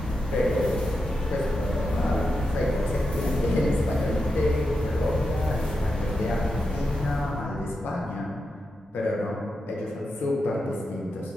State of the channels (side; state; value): both; normal; correlation 0.88